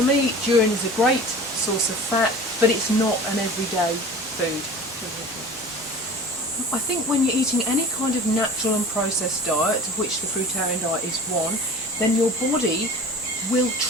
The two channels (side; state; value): both; normal; correlation 0.40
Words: me, durian is a great source of fat, but it's not an everyday food. I think when you're eating any kind of natural and processed diet, of which the fruitarian diet is one, then your body will